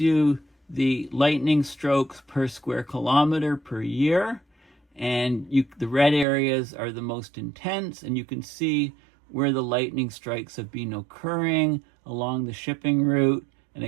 the lightning strokes per square kilometer per year, and the red areas are the most intense, and you can see where the lightning strikes have been occurring along the shipping route, and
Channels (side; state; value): left; drops out; at 6.2 s